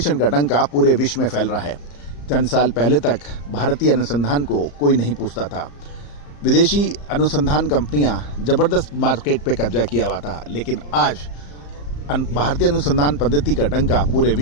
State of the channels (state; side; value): late; right; 34 ms